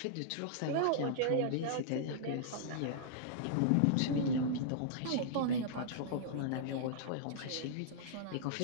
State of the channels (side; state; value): both; different; correlation -0.02